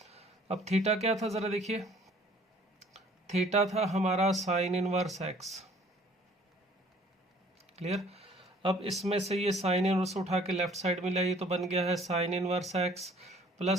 अब थीटा क्या था ज़रा देखिए, थीटा था हमारा साइन इनवर्स x। क्लियर। अब इसमें से ये साइन इनवर्स उठा के लेफ्ट साइड में लाइए, तो बन गया है sine inverse x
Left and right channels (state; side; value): normal; both; correlation 0.55